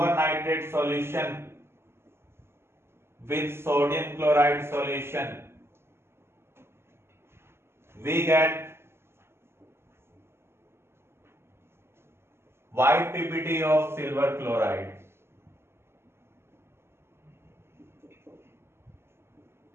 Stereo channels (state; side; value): late; left; 0.12 ms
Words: nitrate solution with sodium chloride solution, we get white PPT of silver chloride